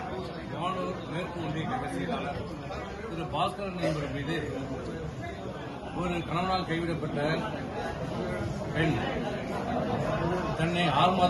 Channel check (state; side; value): identical; both; correlation 1.00